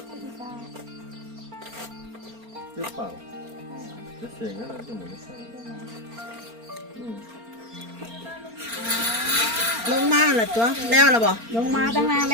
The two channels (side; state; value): left; late; 4.4 ms